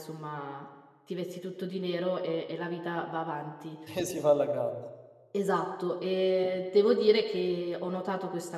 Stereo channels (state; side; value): identical; both; correlation 1.00